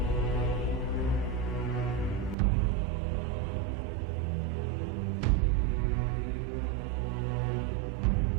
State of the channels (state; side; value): drops out; left; at 2.4 s